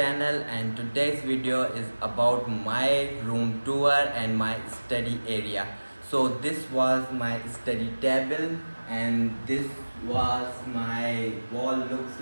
and today's video is about my room tour and my study area. So this was my study table and this was my wall looks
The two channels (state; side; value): inverted; both; correlation -1.00